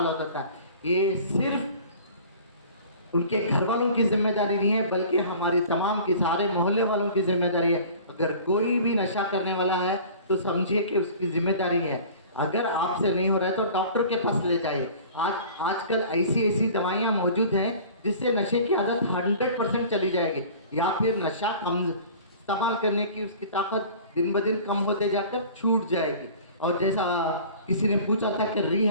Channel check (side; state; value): both; inverted; correlation -0.44